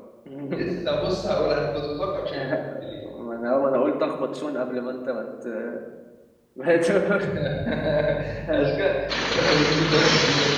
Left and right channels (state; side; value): identical; both; correlation 1.00